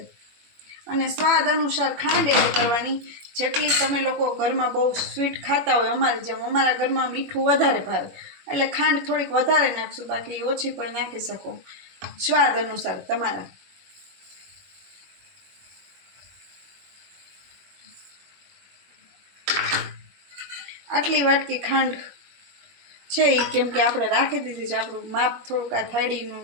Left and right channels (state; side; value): late; left; 21 ms